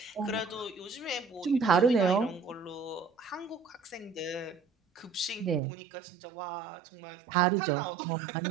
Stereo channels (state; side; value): drops out; left; at 5.6 s